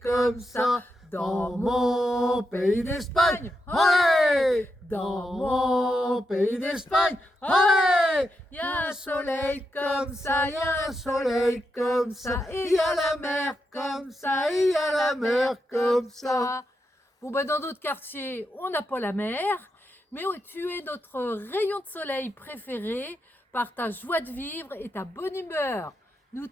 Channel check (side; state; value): both; normal; correlation 0.85